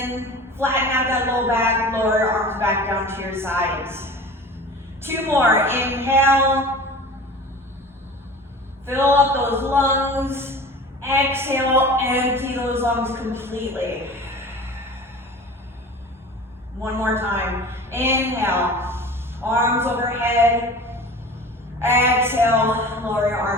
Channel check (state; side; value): normal; both; correlation 0.38